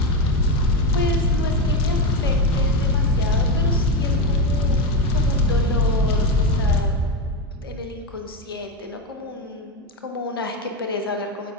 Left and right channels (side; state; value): both; normal; correlation 0.12